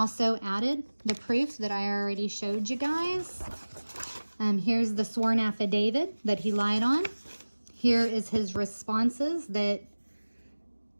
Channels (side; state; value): both; inverted; correlation -1.00